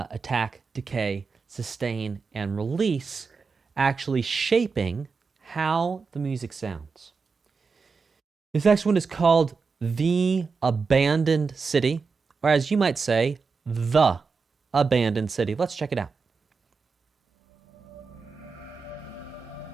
decay, sustain, and release actually shaping how the music sounds. This next one is called The Abandoned City, or as you might say, The Abandoned City. Let's check it out.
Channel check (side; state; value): left; quieter; 4.9 dB